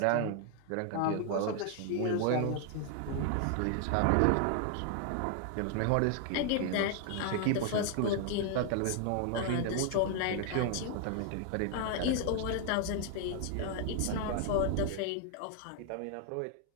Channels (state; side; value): different; both; correlation 0.00